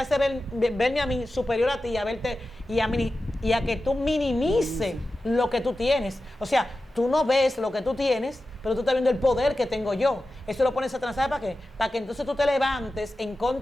verme a mí superior a ti, a verte y a que tú minimices lo que tú tienes. O sea, tú no ves lo que tú tienes, pero tú estás viendo el poder que tengo yo. Eso lo pone Satanás, ¿sabes para qué? Para que entonces tú te levantes en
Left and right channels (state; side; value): normal; both; correlation 0.93